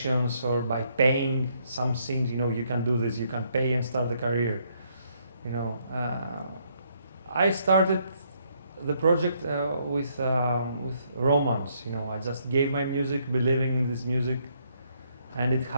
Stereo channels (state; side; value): inverted; both; correlation -0.71